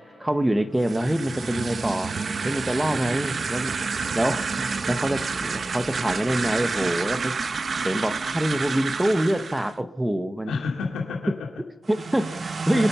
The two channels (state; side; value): normal; both; correlation 0.96